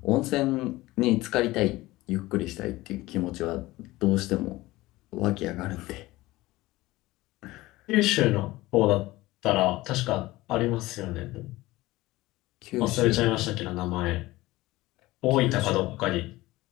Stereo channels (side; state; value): right; quieter; 18.8 dB